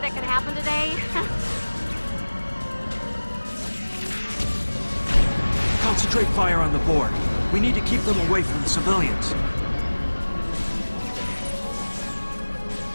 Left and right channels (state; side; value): inverted; both; correlation -1.00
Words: could happen today? Concentrate fire on the Borg. We need to keep them away from the civilians.